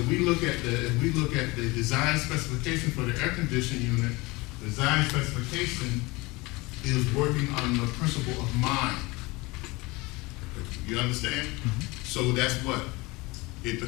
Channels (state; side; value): quieter; right; 23.5 dB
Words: look at the design specification for the air conditioning unit, the design specification is working on the principle of mind. You understand? So that's what? It